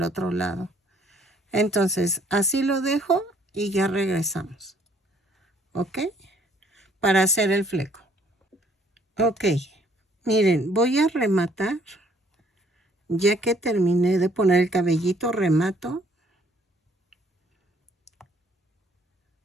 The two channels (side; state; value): both; normal; correlation 0.63